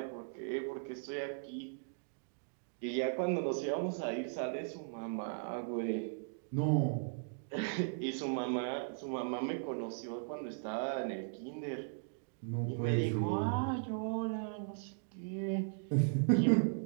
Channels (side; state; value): left; silent; digital silence